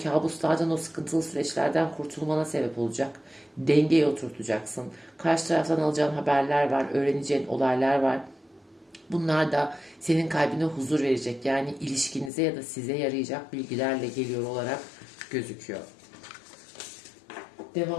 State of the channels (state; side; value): drops out; right; at 12.3 s